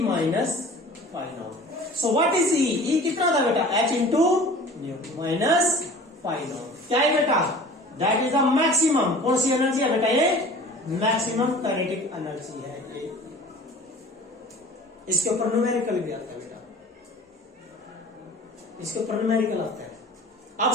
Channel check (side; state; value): both; normal; correlation 0.44